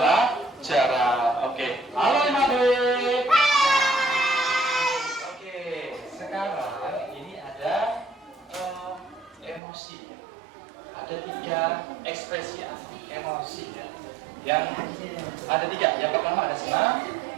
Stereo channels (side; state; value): left; drops out; at 9.6 s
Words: Oke, halo 5B. Oke, sekarang ini ada emosi ya. Ada 3 ekspresi emosi ya. Yang ada 3. Yang pertama ada senang,